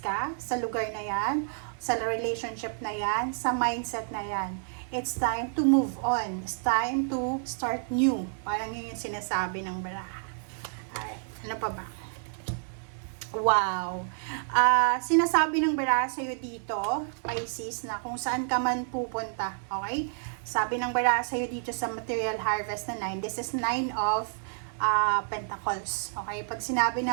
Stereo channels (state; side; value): silent; left; 58 dB below the other